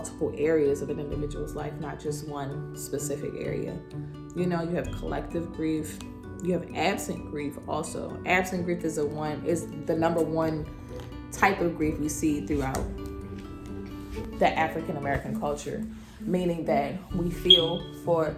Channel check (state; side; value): identical; both; correlation 1.00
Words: areas of an individual's life, not just one specific area. You have collective grief. You have absent grief also. Absent grief is the number one type of grief we see throughout the African American culture, meaning that we feel for